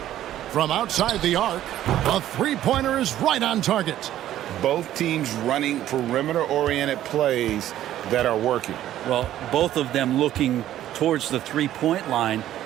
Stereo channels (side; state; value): left; quieter; 12.6 dB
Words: From outside the arc, a three-pointer is right on target. Both teams running perimeter-oriented plays that are working. Well, both of them looking towards the three-point line,